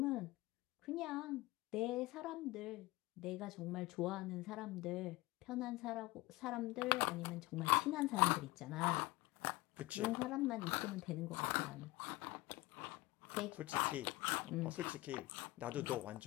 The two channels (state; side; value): quieter; right; 20.3 dB